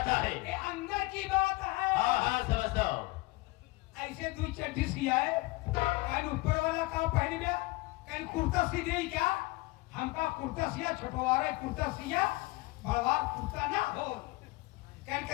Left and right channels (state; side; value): quieter; right; 22.3 dB